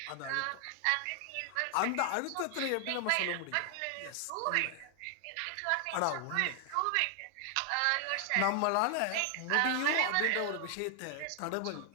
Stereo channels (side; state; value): both; different; correlation 0.00